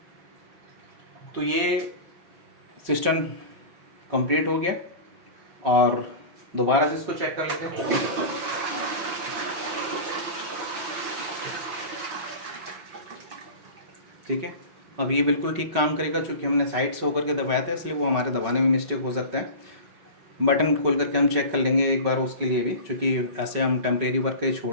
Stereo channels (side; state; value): left; late; 5.3 ms